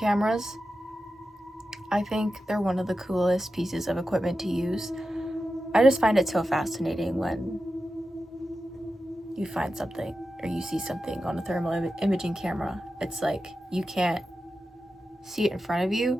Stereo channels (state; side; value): normal; both; correlation 0.92